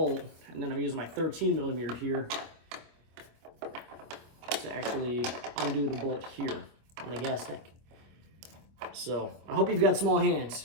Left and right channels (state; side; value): late; left; 25 ms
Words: and then I'm using my 13 millimeter here to actually undo the bolt here on the gas tank. So I hope you've got small